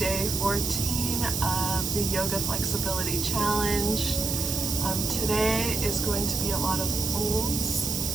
14 of the Yoga Flexibility Challenge. Today is going to be a lot of folds,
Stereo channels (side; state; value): right; noise; hiss, 1 dB below the sound